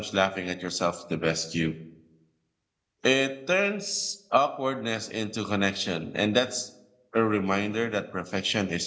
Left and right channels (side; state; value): both; identical; correlation 1.00